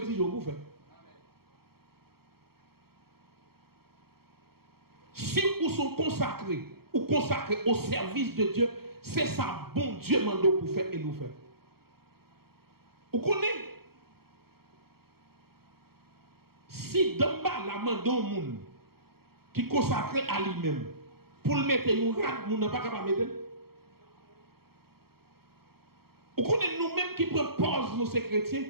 vous faire. Si vous sont consacrés, ou consacrés au service de Dieu, c'est ça bon Dieu m'a pour faire et nous faire. Vous connaissez? Si d'en bas la main d'un monde qui consacre à lui-même, pour le mettre un rat, vous n'avez pas capable de mettre. Vous connaissez nous-mêmes qui prenons pause, nous ces chrétiens,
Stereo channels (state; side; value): late; left; 0.95 ms